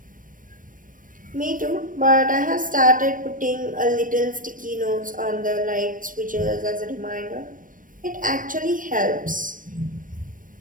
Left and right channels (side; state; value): left; late; 0.39 ms